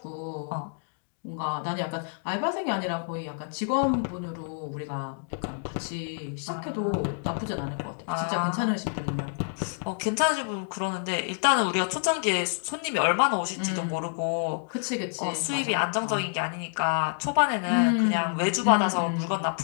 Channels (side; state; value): right; silent; digital silence